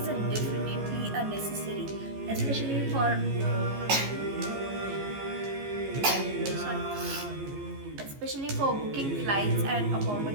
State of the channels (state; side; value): late; left; 15 ms